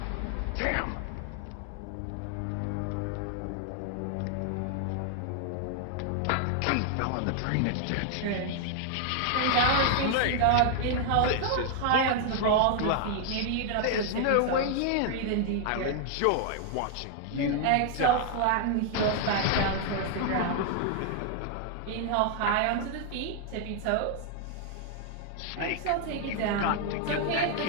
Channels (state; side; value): different; both; correlation 0.00